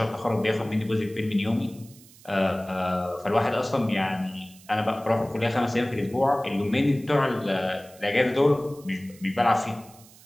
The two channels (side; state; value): right; noise; hiss, 23 dB below the sound